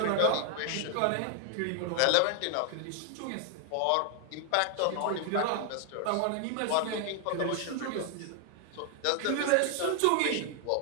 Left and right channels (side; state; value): both; different; correlation 0.00